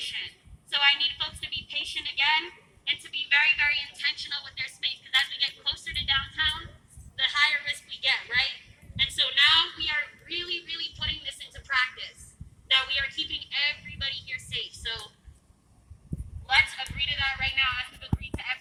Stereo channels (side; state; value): both; identical; correlation 1.00